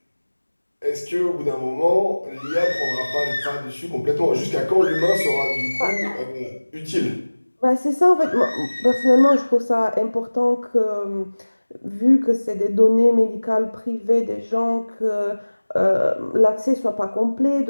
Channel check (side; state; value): both; inverted; correlation -1.00